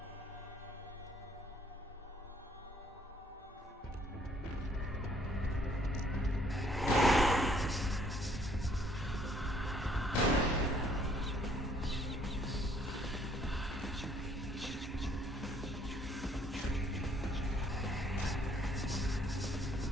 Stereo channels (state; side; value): normal; both; correlation 0.63